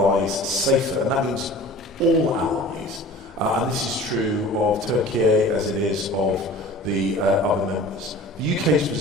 safer. And that means all allies. And this is true of Turkey as it is of the other members. The UK's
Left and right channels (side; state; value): both; normal; correlation 0.42